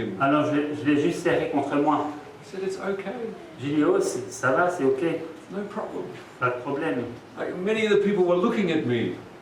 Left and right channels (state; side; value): identical; both; correlation 1.00